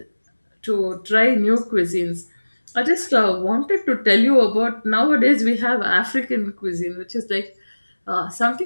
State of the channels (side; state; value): both; inverted; correlation -1.00